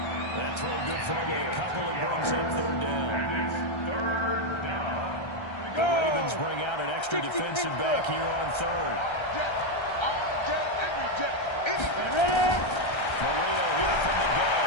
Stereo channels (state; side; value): late; right; 1.3 ms